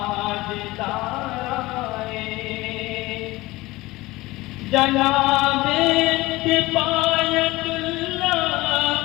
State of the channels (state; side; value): quieter; right; 19.8 dB